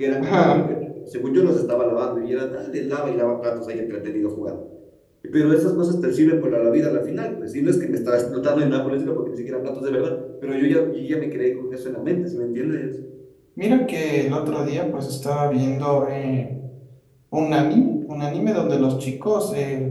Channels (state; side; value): identical; both; correlation 1.00